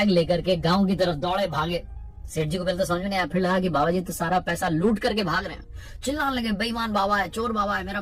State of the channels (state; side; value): identical; both; correlation 1.00